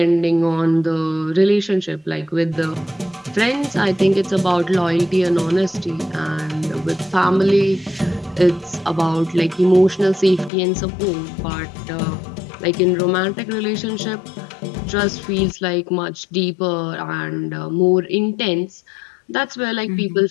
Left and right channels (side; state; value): right; drops out; at 10.5 s